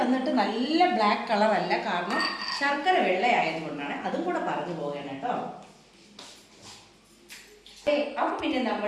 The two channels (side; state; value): both; identical; correlation 1.00